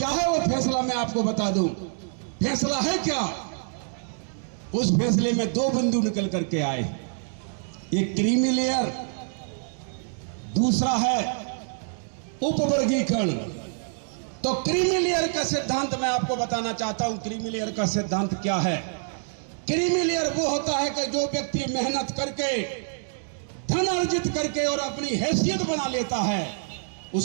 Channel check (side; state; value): left; silent; digital silence